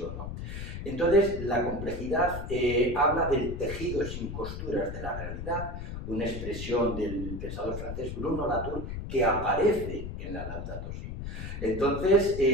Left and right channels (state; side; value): noise; left; rumble, 7 dB below the sound